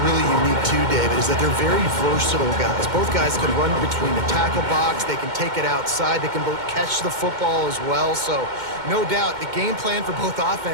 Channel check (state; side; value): late; left; 2.1 ms